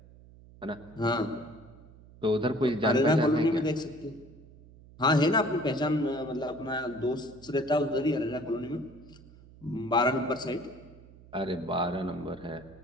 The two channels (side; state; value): right; noise; hum, 22 dB below the sound